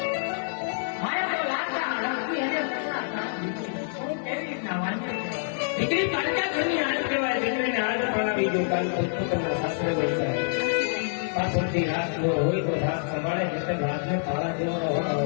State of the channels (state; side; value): silent; right; 55 dB below the other